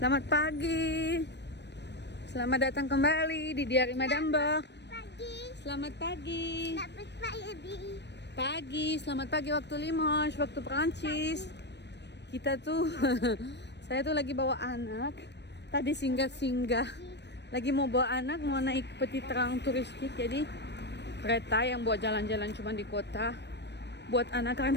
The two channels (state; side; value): late; right; 0.50 ms